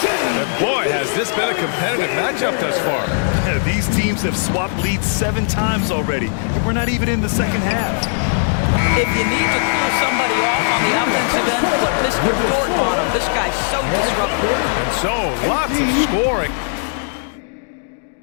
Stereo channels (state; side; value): silent; right; digital silence